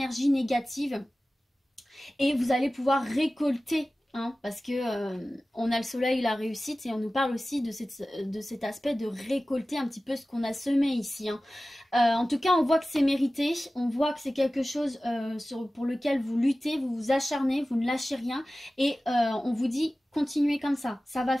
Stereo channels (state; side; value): normal; both; correlation 0.96